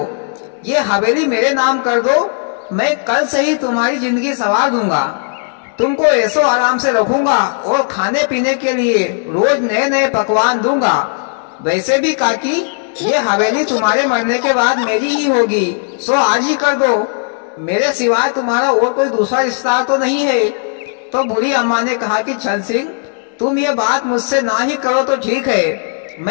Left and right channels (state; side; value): silent; right; digital silence